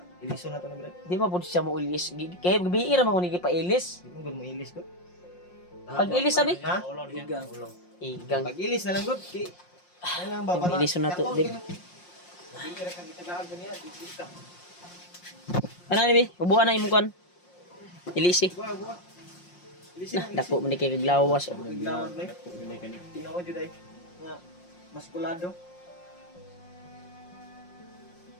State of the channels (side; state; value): right; late; 5.6 ms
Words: Iliso na to na Brad. di ba po siya mo ilis. Kaya gabi mo ni pa ilis. Di mo gud mo ilis ko. Pag ilis sabi? Ha? Ulang niya. Igang. Ulang. Igang. Pag ilis na lang gud ki. Ano lang ba Yung iliso na to, Dib. Bibira kang gitagaag niya, dito. Ano ni bi? Bubuan na imong kan. Ilisi. Buwa. Ilis Nah, dako man ni kay kaglawas. Naglawad na. Tinuod jud ay nga maskulado.